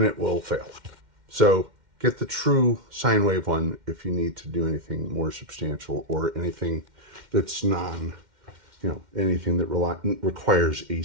it will fail. So get the true sine wave one if you need to do anything more substantial or anything that's anything that requires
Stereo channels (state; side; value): late; left; 2.1 ms